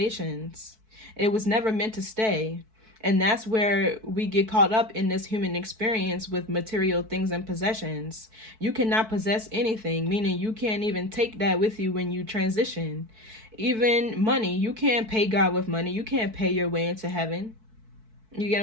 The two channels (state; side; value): late; left; 4.6 ms